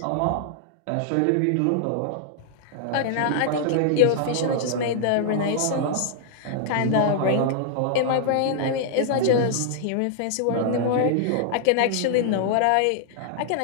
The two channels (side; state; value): both; different; correlation -0.01